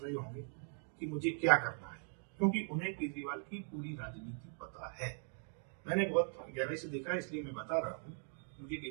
रहे होंगे कि मुझे क्या करना है, क्योंकि उन्हें केजरीवाल की पूरी राजनीति पता है। मैंने बहुत गहराई से देखा, इसलिए मैं बता रहा हूँ। मुझे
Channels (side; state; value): left; silent; 51 dB below the other